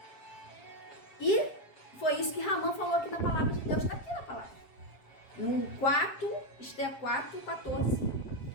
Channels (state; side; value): late; right; 7.6 ms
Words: E foi isso que Ramã falou aqui na palavra de Deus, está aqui na palavra. No 4, Esther 4, 14.